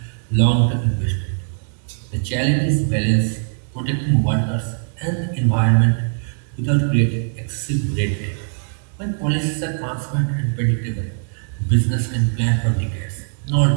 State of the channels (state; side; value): silent; left; digital silence